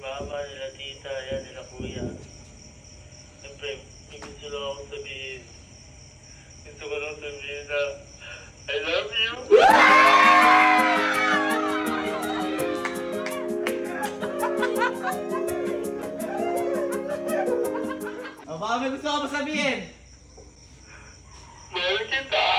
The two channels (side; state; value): both; identical; correlation 1.00